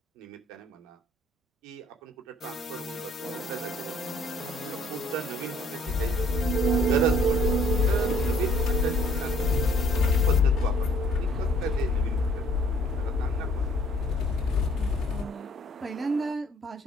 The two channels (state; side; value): normal; both; correlation 0.60